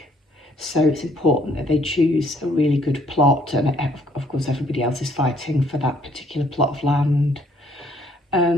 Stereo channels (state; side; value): normal; both; correlation 0.64